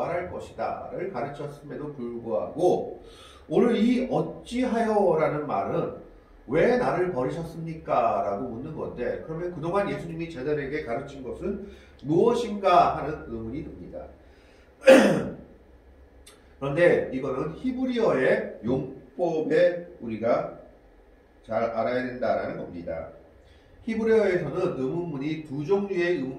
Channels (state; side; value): identical; both; correlation 1.00